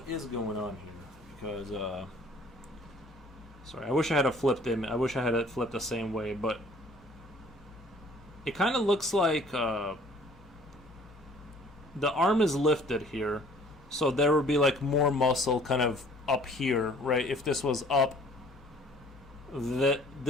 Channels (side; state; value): both; normal; correlation 0.55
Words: is going on here, because sorry, I wish I had a flipped image. I wish I had it flipped the same way, but it kind of looks like the arm is lifted here, so there would be like more muscle kind of up here, right? If this was up,